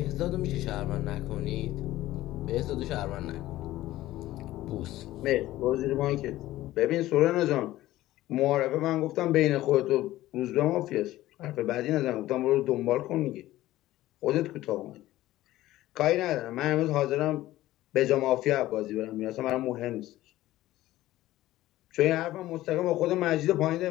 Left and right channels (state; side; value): quieter; right; 15.7 dB